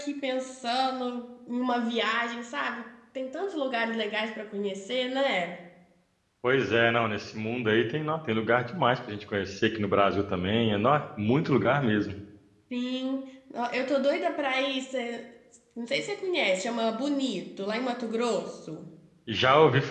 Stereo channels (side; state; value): both; identical; correlation 1.00